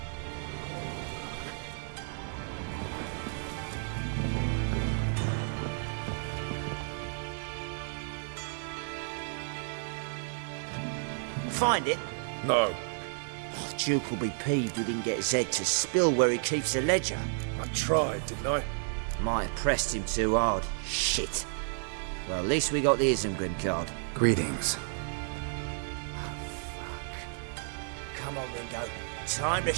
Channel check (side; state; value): left; silent; digital silence